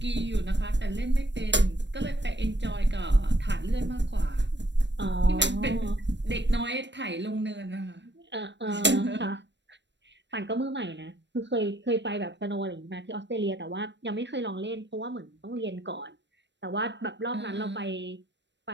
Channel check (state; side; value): late; left; 0.52 ms